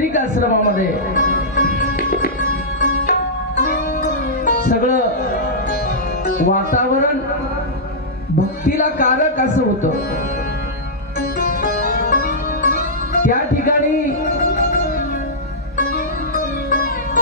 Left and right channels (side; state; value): both; normal; correlation -0.12